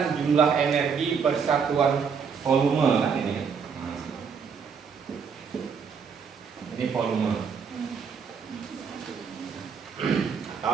jumlah energi persatuan volume kan ini. Ini volume.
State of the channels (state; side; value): quieter; left; 6.2 dB